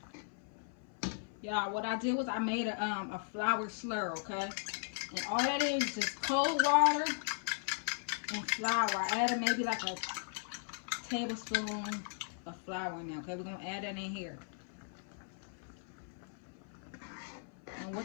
Y'all, what I did was I made a flour slur, okay? And all that is just cold water and flour. I added maybe like a tablespoon of flour in there, okay? We're going to add that in here. And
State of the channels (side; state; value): right; silent; 53 dB below the other